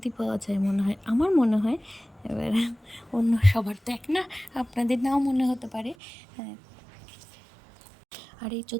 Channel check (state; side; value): drops out; left; at 6.0 s